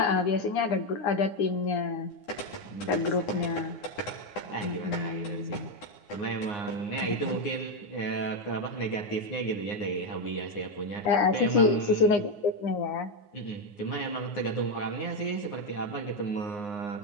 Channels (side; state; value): right; late; 9.6 ms